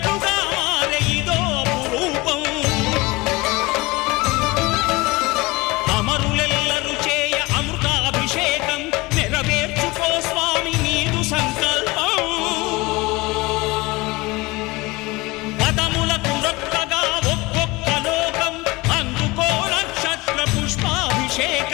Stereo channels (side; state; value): right; quieter; 22.8 dB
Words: మారే ఇదో రూపం అమరులెల్లరు చేయ అమృతాభిషేకం నెరవేర్చుకో స్వామి నీదు సంకల్పం పదములకు రొక్కగా ఒక్కొక్క లోకం అందుకో నక్షత్ర